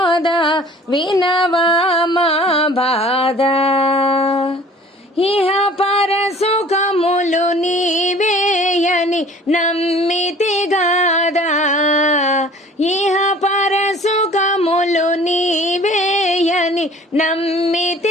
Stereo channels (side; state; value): both; normal; correlation 0.48